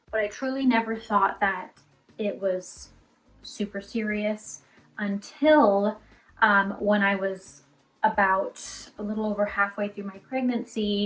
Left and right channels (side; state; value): both; identical; correlation 1.00